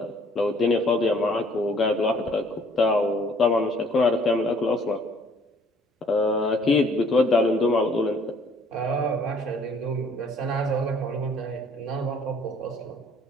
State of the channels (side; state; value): both; normal; correlation 0.59